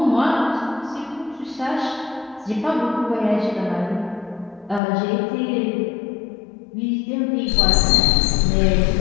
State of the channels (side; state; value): right; drops out; at 4.8 s